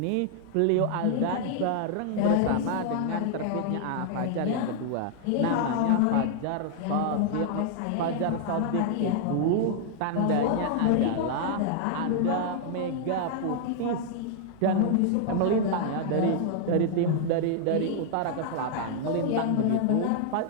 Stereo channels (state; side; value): different; both; correlation -0.01